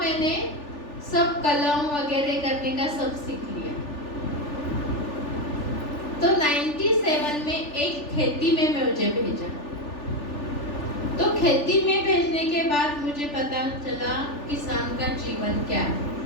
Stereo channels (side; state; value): right; late; 3.4 ms